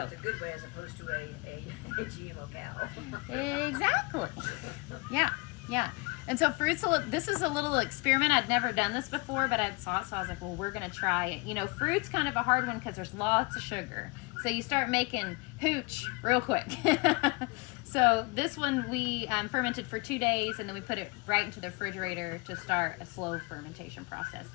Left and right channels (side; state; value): right; quieter; 28.4 dB